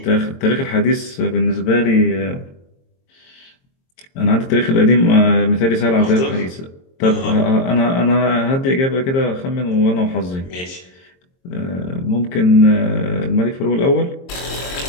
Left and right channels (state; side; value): late; right; 22 ms